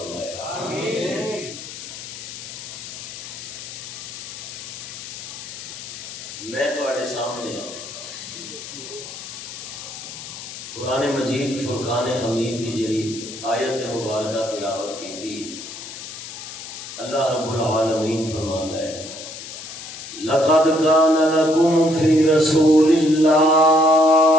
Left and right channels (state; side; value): noise; left; hiss, 11 dB below the sound